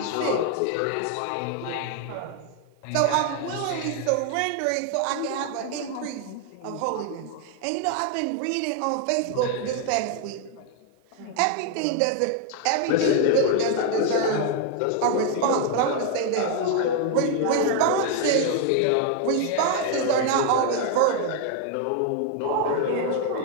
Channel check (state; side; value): different; both; correlation 0.00